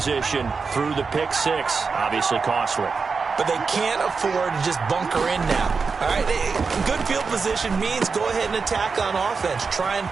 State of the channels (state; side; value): quieter; left; 4.9 dB